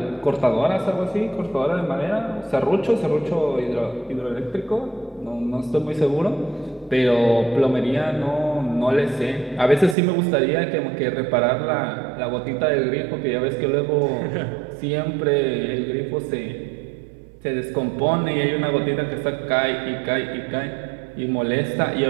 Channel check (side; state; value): left; drops out; at 10.0 s